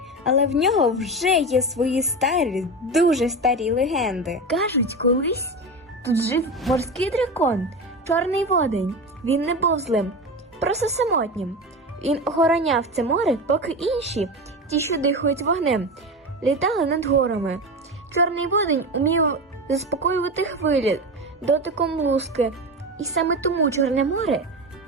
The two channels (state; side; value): normal; both; correlation 0.23